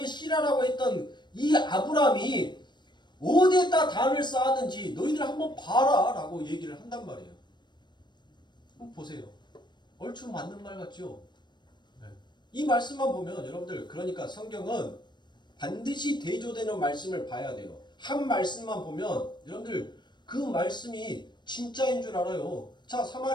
씨라라고 했던 이 아브라함이 어디에다 단을 쌓았는지 너희들 한번 봐라 라고 얘기를 한단 말이에요. 한번 보세요. 얼추 맞는 말 같죠? 네. 이 말씀만 보면 여러분들 그러니까 성경은 반드시 대조되는 말씀을 봐야 돼요. 한 말씀만 보면 여러분들 그 말씀이 진짜인 줄 알아요. 자,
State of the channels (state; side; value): late; right; 0.22 ms